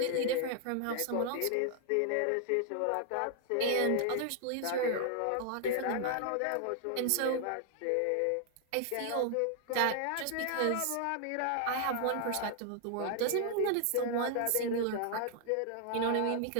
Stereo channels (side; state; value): both; different; correlation 0.00